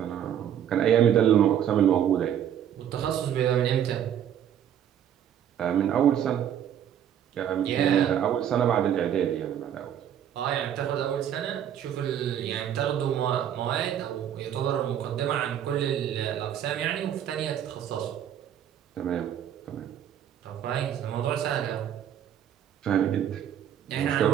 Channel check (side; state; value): left; quieter; 9.8 dB